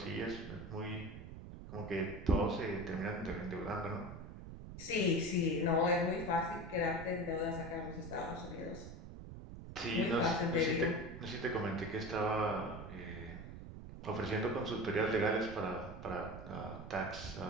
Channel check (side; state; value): right; noise; rumble, 11 dB below the sound